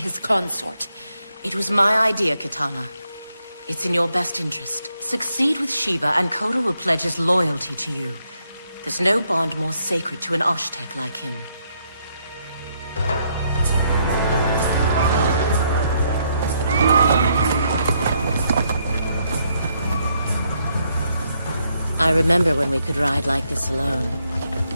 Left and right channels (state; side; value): inverted; both; correlation -0.75